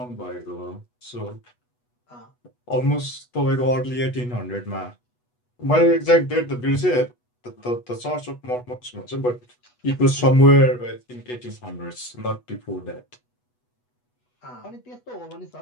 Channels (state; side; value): late; right; 8.2 ms